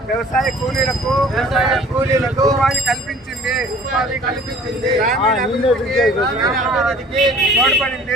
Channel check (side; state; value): both; normal; correlation 0.50